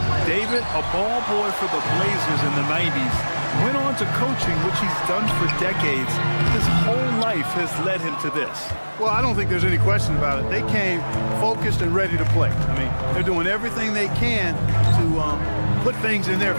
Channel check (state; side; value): inverted; both; correlation -1.00